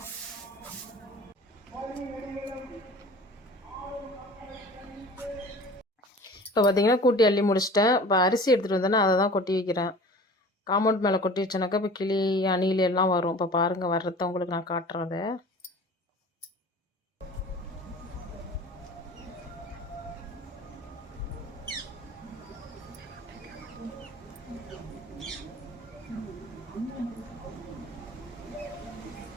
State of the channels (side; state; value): both; normal; correlation 0.42